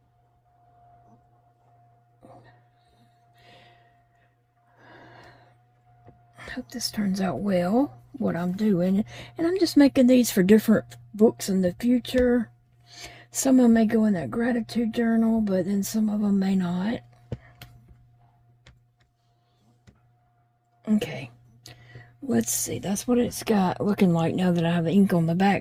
I hope this turns out well, what I'm doing. And I'm just making these for different books in the future. Some of them may go in that gratitude journal, but then some of them may not. Okay, let's see. That's what it's got looking like now that I have ink on the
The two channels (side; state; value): both; identical; correlation 1.00